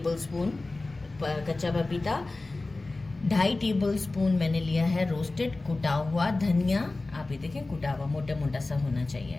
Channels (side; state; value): right; quieter; 3.2 dB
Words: स्पून कच्चा पपीता। 2.5 टेबल स्पून मैंने लिया है रोस्टेड कुटा हुआ धनिया। आप ये देखें, कुटा हुआ मोटा मोटा सा होना